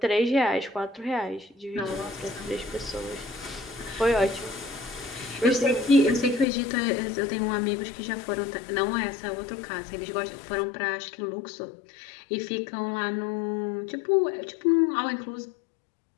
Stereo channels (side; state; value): right; drops out; at 6.5 s